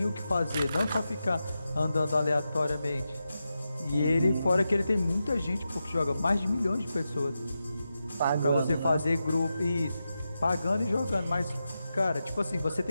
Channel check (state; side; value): inverted; both; correlation -0.90